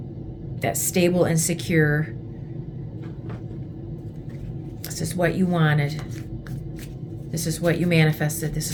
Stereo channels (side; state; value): both; identical; correlation 1.00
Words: That's stable and secure. This is what you wanted. This is what you manifested. This